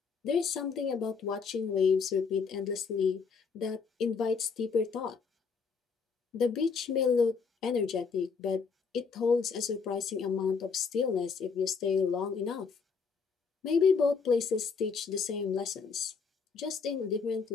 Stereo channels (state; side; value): quieter; right; 5.4 dB